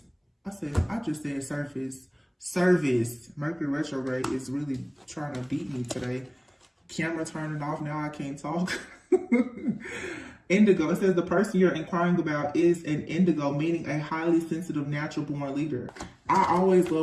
I just said surface. Service. Mercury retrograde is really trying to beat me today. Camera turning off, now I can't talk. Indigo. It says the person you're inquiring about is an indigo, meaning a highly sensitive, natural-born leader. I always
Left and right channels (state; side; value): identical; both; correlation 1.00